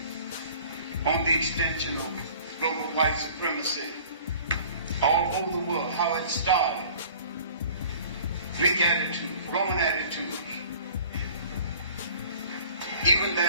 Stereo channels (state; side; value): inverted; both; correlation -0.48